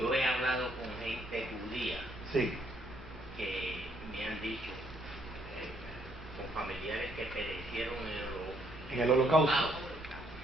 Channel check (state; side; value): normal; both; correlation 0.70